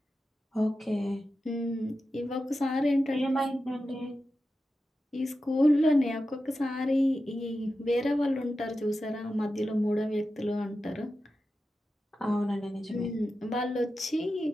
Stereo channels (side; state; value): both; normal; correlation 0.91